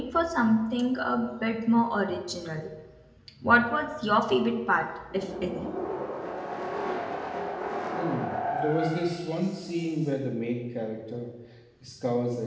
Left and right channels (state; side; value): identical; both; correlation 1.00